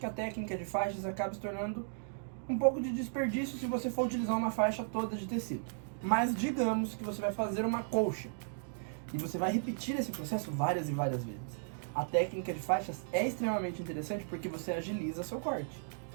a técnica de faixas acaba se tornando um pouco de desperdício se você for utilizar uma faixa toda de tecido. Mas digamos que você vai fazer uma colcha e você vai repetir esse processo várias e várias vezes. A técnica de faixas é extremamente interessante porque você agiliza seu corte,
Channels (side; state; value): left; silent; digital silence